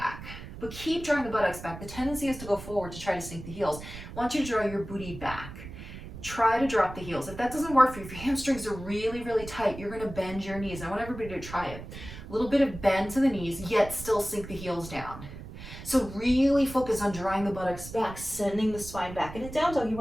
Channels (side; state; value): right; noise; rumble, 12 dB below the sound